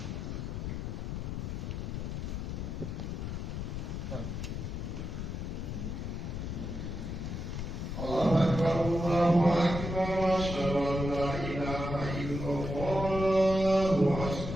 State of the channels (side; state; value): left; noise; rumble, 4 dB below the sound